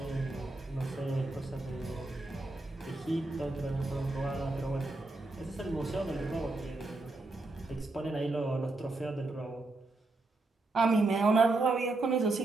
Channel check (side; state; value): left; quieter; 3.1 dB